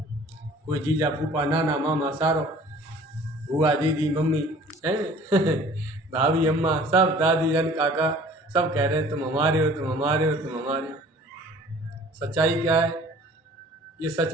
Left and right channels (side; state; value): both; normal; correlation 0.50